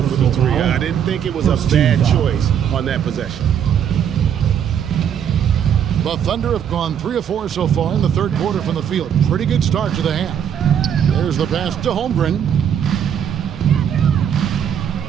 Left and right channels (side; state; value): left; quieter; 8.7 dB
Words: for the 3. I didn't think it was a bad choice on that possession. The Thunder have gone 3 of 4 so far in the third quarter from the field. Pretty good start to the half. There's the pass to Holmgren.